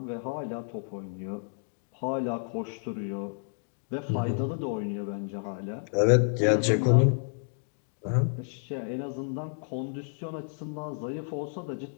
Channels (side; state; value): right; silent; digital silence